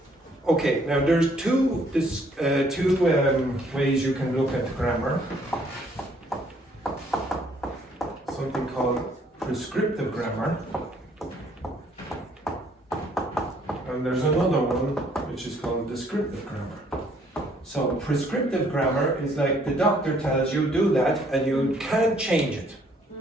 Okay, now there's two ways you can look at grammar. Something called prescriptive grammar. And there's another one which is called descriptive grammar. So prescriptive grammar is like the doctor tells you do that and you can't change it.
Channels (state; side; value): normal; both; correlation 0.64